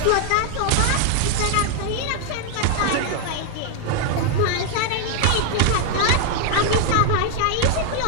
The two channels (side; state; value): both; different; correlation 0.00